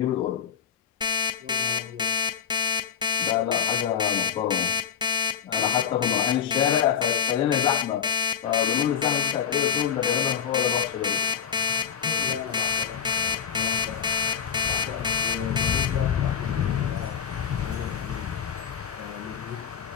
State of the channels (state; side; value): quieter; right; 7.8 dB